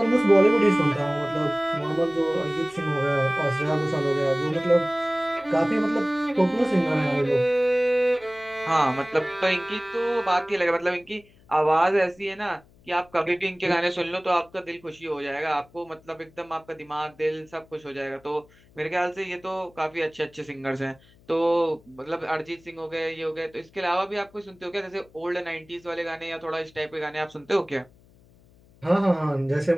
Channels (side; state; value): left; noise; hum, 28 dB below the sound